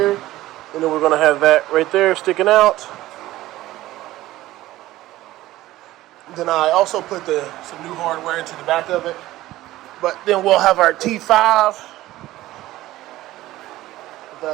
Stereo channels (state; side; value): quieter; left; 16.1 dB